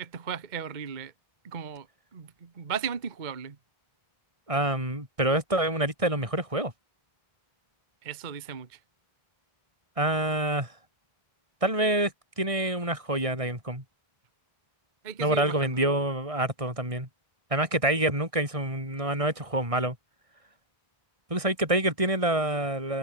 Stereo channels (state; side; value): late; left; 1.6 ms